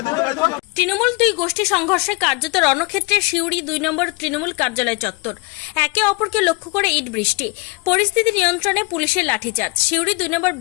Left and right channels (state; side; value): quieter; right; 26.9 dB